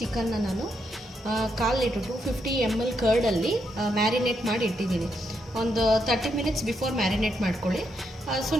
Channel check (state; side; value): normal; both; correlation 0.79